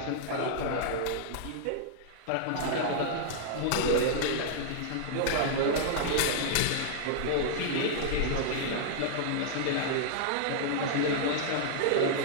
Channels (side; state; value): both; different; correlation -0.01